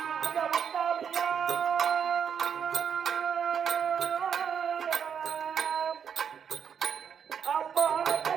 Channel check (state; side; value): quieter; left; 7.6 dB